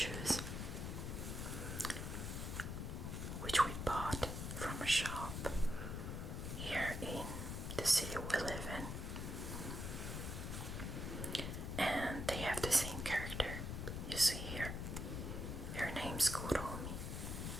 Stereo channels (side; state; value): left; noise; rumble, 4 dB below the sound